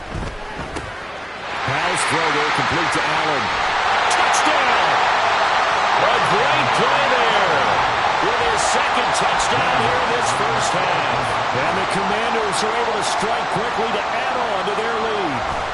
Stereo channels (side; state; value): both; identical; correlation 1.00